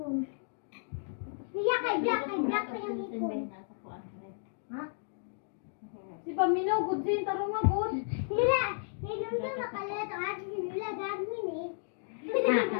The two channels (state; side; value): silent; right; digital silence